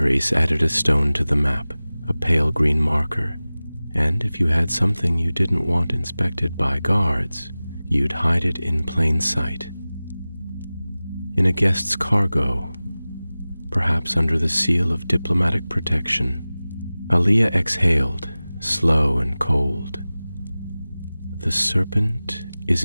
added a stone to the map, a pale green marker, and if you had something you didn't want inspected by guards, you'd hide it in plain sight. In a guest's cargo, perhaps under the seal of diplomatic protection. Aaliyah exhaled, slow and cold. The serpent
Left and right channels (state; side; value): inverted; both; correlation -0.98